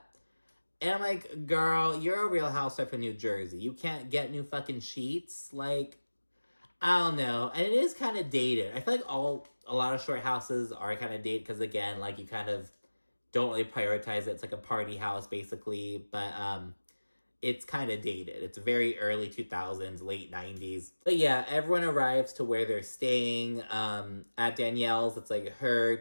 And I'm like, girl, you're a Real Housewife of New Jersey. You can't get new fucking sheets? I don't know. And it is kind of dated. I feel like a lot of short houses are kind of dated because, again, you kind of don't really prioritize it. It's like a party house, basically. But it's kind of dated. It's very early 2000s, late 90s. But yeah, everyone arrives to where they're staying. At Danielle's, it's her,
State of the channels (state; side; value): inverted; both; correlation -1.00